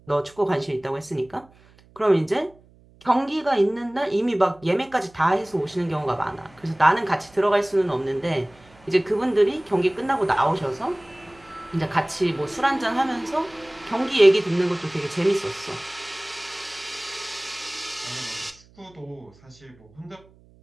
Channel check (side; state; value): right; noise; hum, 28 dB below the sound